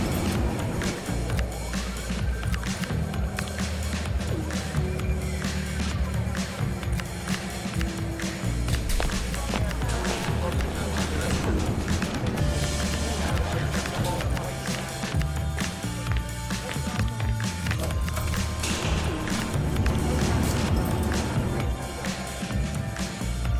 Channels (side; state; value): both; identical; correlation 1.00